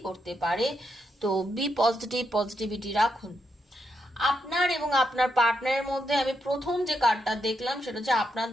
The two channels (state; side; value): normal; both; correlation 0.82